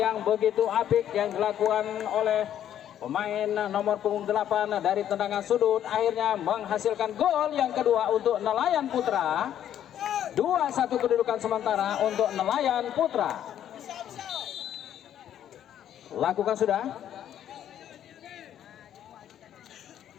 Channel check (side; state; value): right; quieter; 10.6 dB